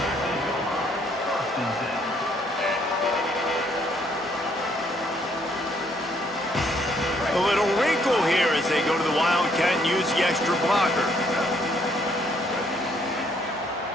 A little wrinkle here as they go to the Wildcat and use the extra blocker.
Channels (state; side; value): normal; both; correlation 0.68